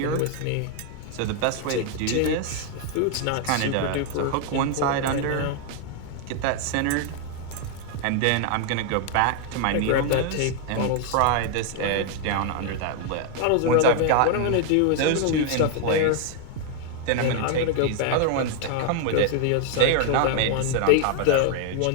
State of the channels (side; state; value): both; different; correlation 0.00